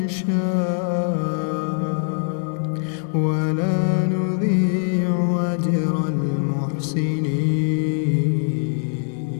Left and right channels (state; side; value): silent; right; digital silence